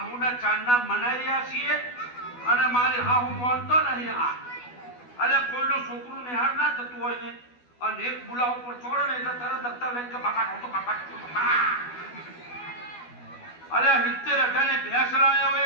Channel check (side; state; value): right; late; 12 ms